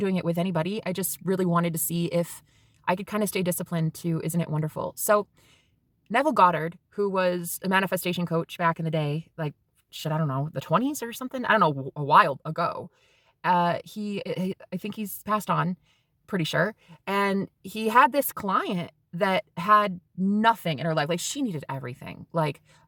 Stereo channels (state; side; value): identical; both; correlation 1.00